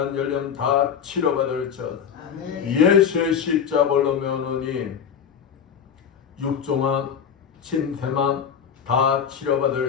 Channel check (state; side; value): quieter; right; 7.6 dB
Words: 열염 다 치료받을지어다. 예수의 십자벌로 면허니 육종암, 침샘암 다